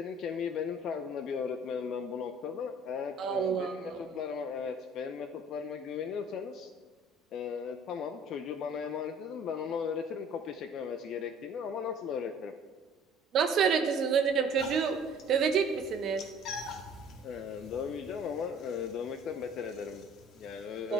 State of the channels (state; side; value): normal; both; correlation 0.51